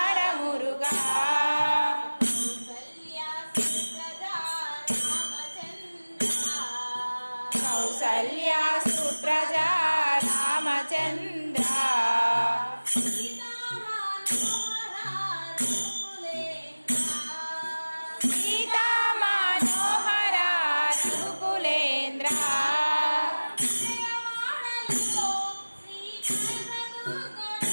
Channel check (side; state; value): both; inverted; correlation -1.00